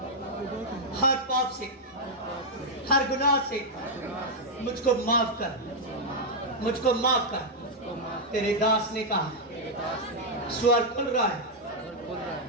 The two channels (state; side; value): normal; both; correlation -0.03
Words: हर पाप से, हर गुनाह से। मुझको माफ कर, मुझको माफ कर। तेरे दास ने कहा स्वर्ग खुल रहा है,